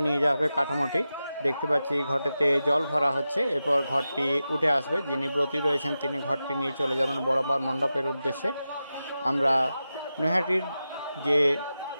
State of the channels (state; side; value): inverted; both; correlation -0.92